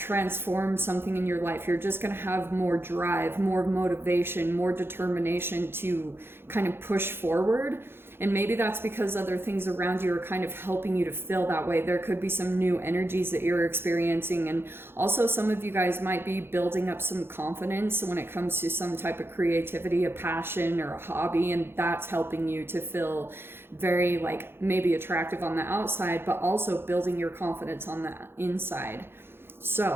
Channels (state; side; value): late; left; 0.11 ms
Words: something in your life. You're just going to have more drive, more motivation, more determination to kind of push forward. And maybe that's because other things around you are kind of helping you to feel that way. There could be some new energies that you're experiencing. And also some of you guys might be building up some confidence when it comes to some type of creativity, a passion or a hobby. And that's helping you to feel very like maybe attractive on the outside, but also building your confidence on the inside.